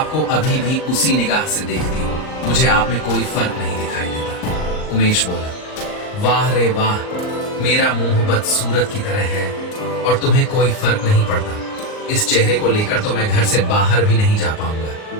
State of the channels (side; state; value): right; late; 39 ms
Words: अभी भी उसी निगाह से देखती हूँ, मुझे आप में कोई फर्क नहीं दिखाई देता। उमेश बोला, वाह रे वाह, मेरा मुंह बदसूरत की तरह है और तुम्हें कोई फर्क नहीं पड़ता। इस चेहरे को लेकर तो मैं घर से बाहर भी नहीं जा पाऊंगा।